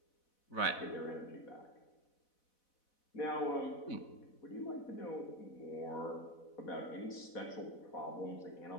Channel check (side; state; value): right; late; 4.1 ms